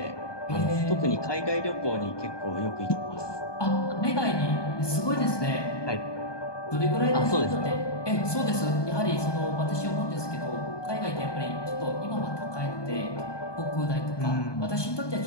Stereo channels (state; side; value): late; right; 1.2 ms